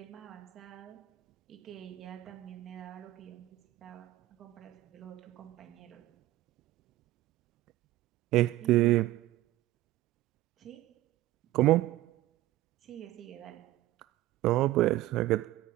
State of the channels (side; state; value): left; quieter; 16.2 dB